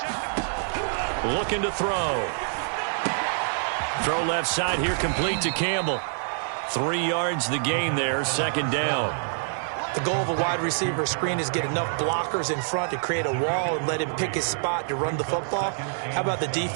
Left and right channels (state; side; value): silent; left; digital silence